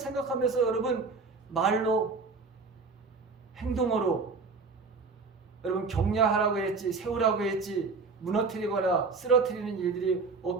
여러분 말로 행동으로 여러분 격려하라고 했지, 세우라고 했지, 무너뜨리거나 쓰러뜨리는 일들이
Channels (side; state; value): left; quieter; 4.4 dB